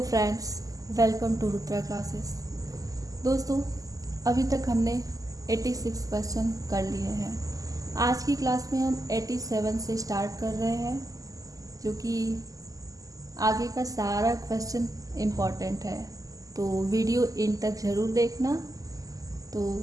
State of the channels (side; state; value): left; late; 0.17 ms